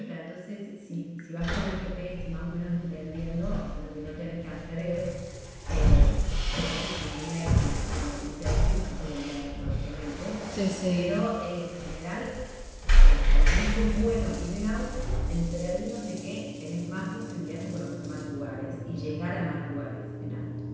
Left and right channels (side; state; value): both; identical; correlation 1.00